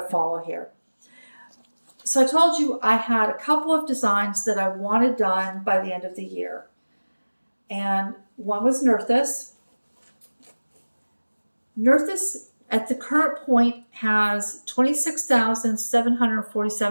follow here. So I told you I had a couple of designs that I wanted done by the end of the year. And one was Nerthus. Nerthus at the current point has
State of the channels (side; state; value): both; inverted; correlation -1.00